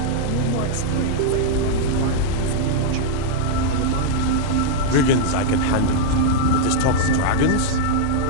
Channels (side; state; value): both; different; correlation -0.02